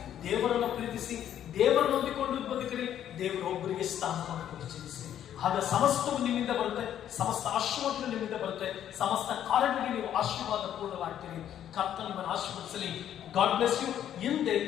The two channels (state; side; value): quieter; right; 10.5 dB